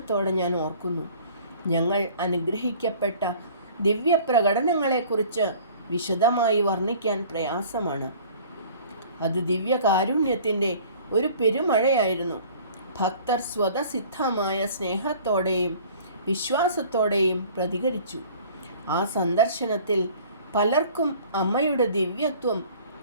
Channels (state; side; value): inverted; both; correlation -0.49